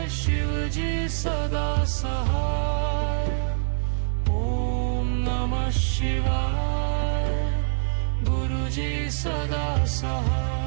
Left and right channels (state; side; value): silent; left; digital silence